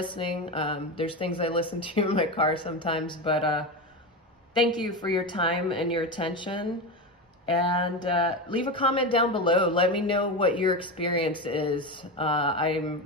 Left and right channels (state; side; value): normal; both; correlation 0.18